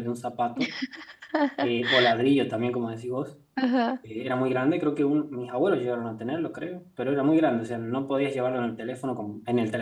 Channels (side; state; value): both; identical; correlation 1.00